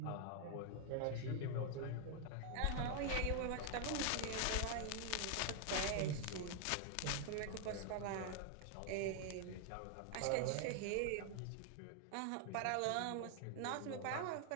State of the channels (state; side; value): different; both; correlation 0.00